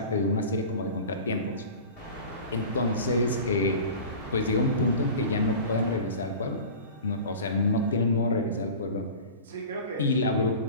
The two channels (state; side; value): inverted; both; correlation -0.37